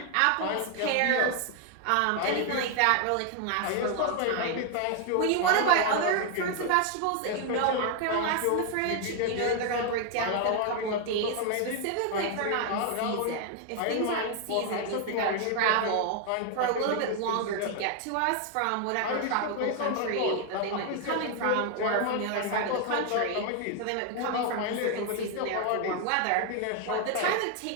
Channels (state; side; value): different; both; correlation 0.00